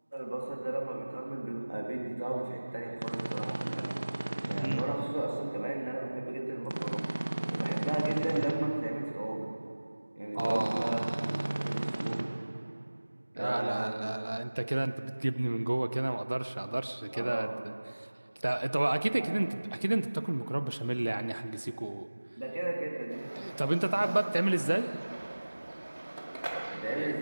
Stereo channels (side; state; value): both; inverted; correlation -1.00